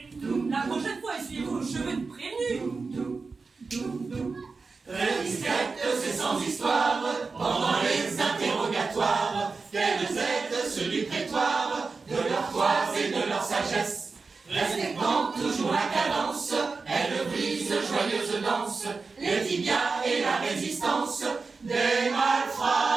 La prochaine fois, essuyez-vous le cheveu de prévenu. Très discrète, c'est sans histoire, pendant les interrogatoires, qu'elles aident ceux du prétoire, de leur toise et de leur sagesse. Respectant toujours la cadence, elles brisent joyeuse danse, les tibias et la résistance, des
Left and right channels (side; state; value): left; quieter; 4.3 dB